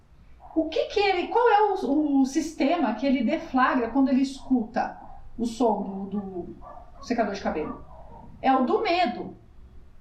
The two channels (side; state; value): both; identical; correlation 1.00